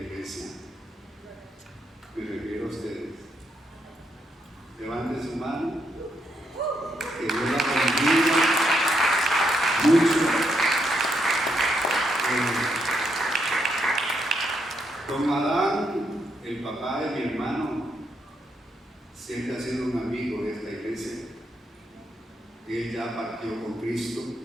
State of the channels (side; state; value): both; normal; correlation 0.78